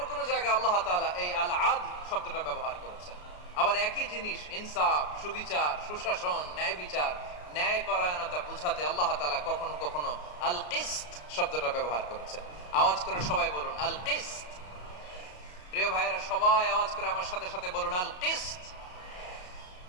কোন জায়গায় আল্লাহ তাআলা এই আল আদ শব্দটা ব্যবহার করেছেন। আবার একই জিনিস ইনসাফ, সুবিচার, সুশাসন, ন্যায় বিচার, ন্যায় পরায়ণতা বুঝাতে আল্লাহ তাআলা কখনো কখনো আল কিসত শব্দটা ব্যবহার করেছেন। আওয়াজ করে সবাই বলুন আল কিসত। প্রিয় ভাইরা, সবাই আওয়াজ করে আমার সাথে সাথে বলুন আল কিসত।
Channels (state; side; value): late; right; 34 ms